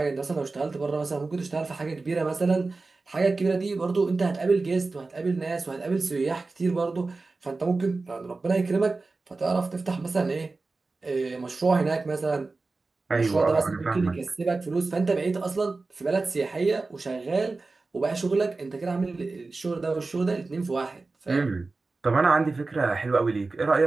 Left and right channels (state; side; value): quieter; left; 3.7 dB